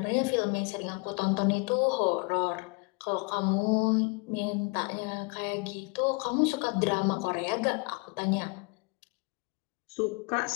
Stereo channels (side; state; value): right; quieter; 30.4 dB